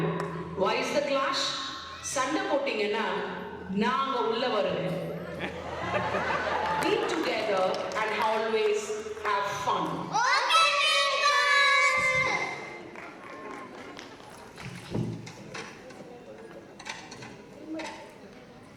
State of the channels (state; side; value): identical; both; correlation 1.00